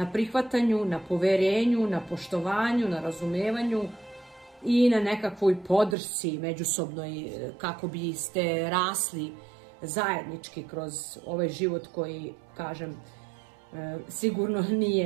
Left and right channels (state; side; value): drops out; left; at 6.0 s